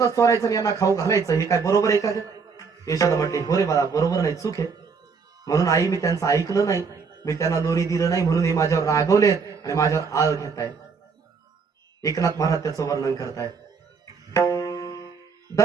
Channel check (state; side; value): quieter; left; 5.3 dB